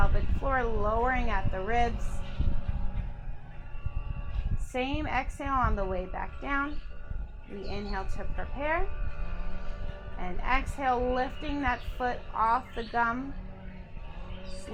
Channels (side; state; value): both; identical; correlation 1.00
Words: floor, lowering at the ribs. Same exhale on the way back down. We inhale to prepare, and exhale, lifting that foot off the gum,